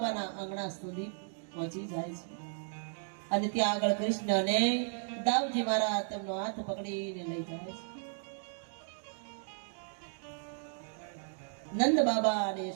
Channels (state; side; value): silent; left; digital silence